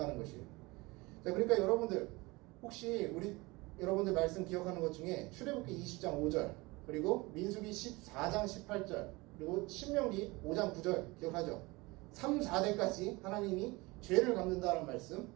것이에요. 자, 그러니까 여러분들 혹시 여러분들 말씀 기억하는 것 중에 출애굽기 20장 5절 그리고 민수기 14장 18절 그리고 신명기 5장 9절 기억하죠? 3, 4대까지 하나님이 죄를 갚는다는 말씀.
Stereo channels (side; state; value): left; quieter; 23.3 dB